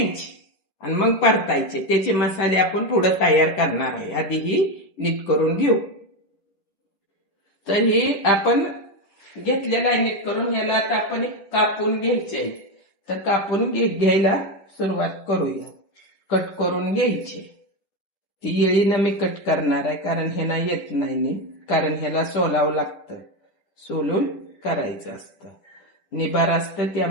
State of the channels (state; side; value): late; right; 10 ms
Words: आणि मग परतायचे. त्याचे मसाले आपण पुढे तयार करणार आहे. आधी ही नीट करून घेऊ. तर ही आपण घेतलेला नीट करून ह्याला आता आपण कापून घ्यायचे. तर कापून घ्यायला सुरुवात करूया. कट करून घ्यायचे. ती येळीनं मी कट करणार आहे कारण ह्याला येत नाही, कारण ह्याला सोलावं लागतं, सोलून करायचं असतं. निबार असतं